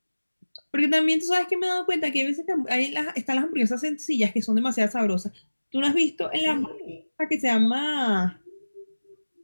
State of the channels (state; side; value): inverted; both; correlation -1.00